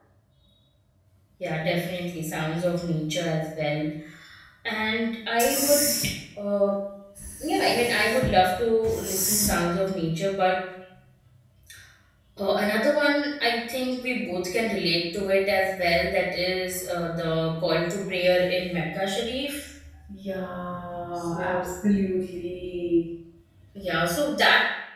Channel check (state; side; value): identical; both; correlation 1.00